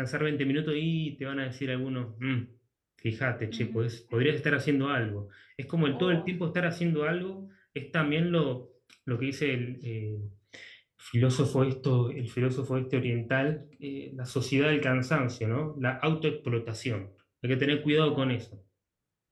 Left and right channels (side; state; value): both; identical; correlation 1.00